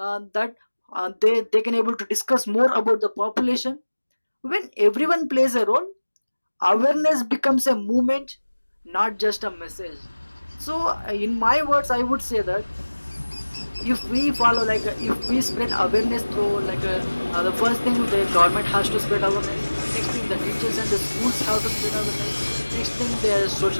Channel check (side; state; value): both; inverted; correlation -1.00